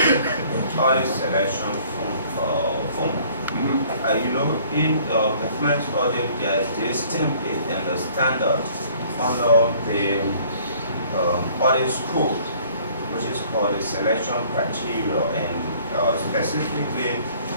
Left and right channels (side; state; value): both; inverted; correlation -0.56